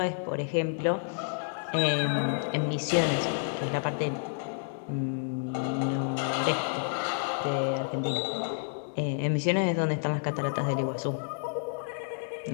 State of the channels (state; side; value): silent; right; digital silence